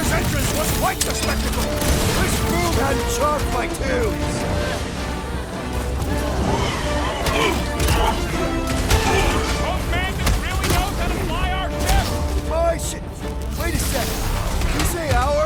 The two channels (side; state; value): both; identical; correlation 1.00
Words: entrance was quite the spectacle! This Foom had chalked my tunes! Mantis really knows how to fly our ship! My shit! Wait a second. Did you say